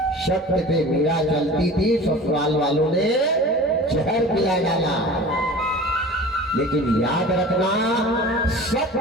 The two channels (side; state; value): both; normal; correlation 0.40